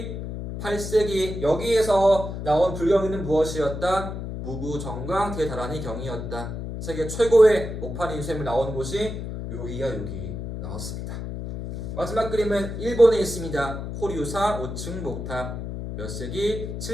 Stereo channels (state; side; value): noise; left; hum, 6 dB below the sound